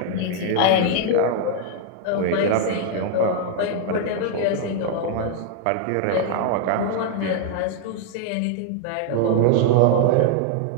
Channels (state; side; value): different; both; correlation 0.00